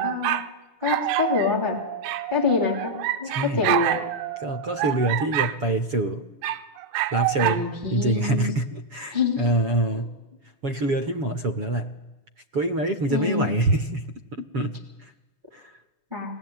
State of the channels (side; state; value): left; late; 7.1 ms